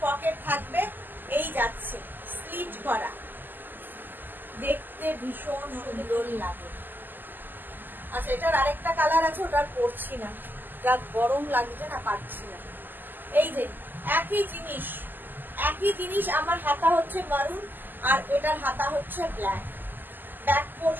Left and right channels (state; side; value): late; left; 0.090 ms